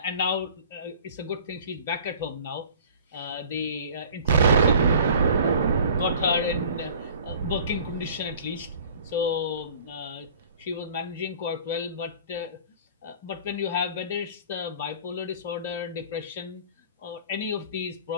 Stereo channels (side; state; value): both; inverted; correlation -0.46